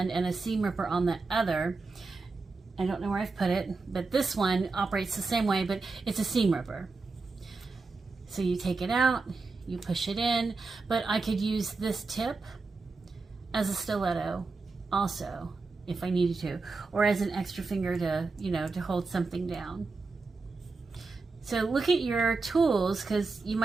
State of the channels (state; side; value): quieter; left; 4.0 dB